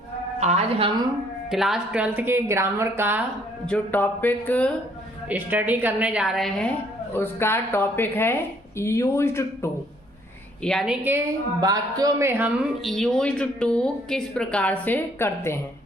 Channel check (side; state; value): both; normal; correlation 0.64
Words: आज हम class 12th के ग्रामर का जो टॉपिक स्टडी करने जा रहे हैं उसका टॉपिक है यूज्ड टू, यानी कि वाक्यों में हम यूज्ड टू किस प्रकार से करते हैं।